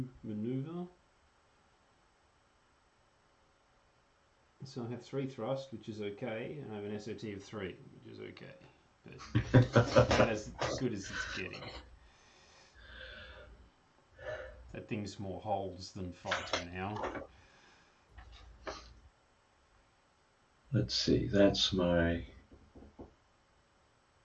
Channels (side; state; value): both; identical; correlation 1.00